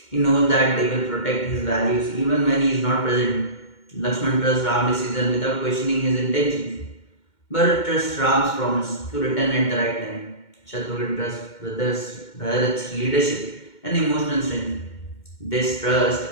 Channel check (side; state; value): right; late; 2.2 ms